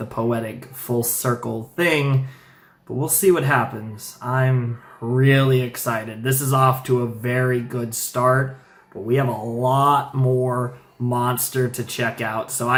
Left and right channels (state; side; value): identical; both; correlation 1.00